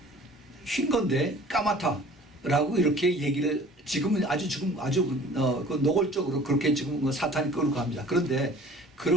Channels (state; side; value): normal; both; correlation 0.48